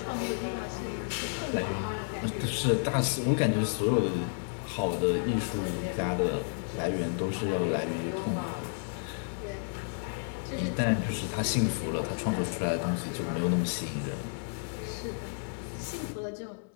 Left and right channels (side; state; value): right; silent; digital silence